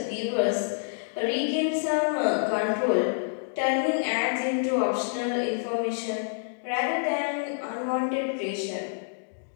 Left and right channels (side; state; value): right; silent; digital silence